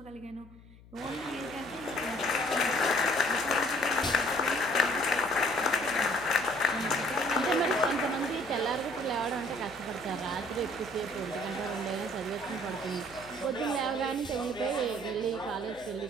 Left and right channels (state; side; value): noise; left; hum, 22 dB below the sound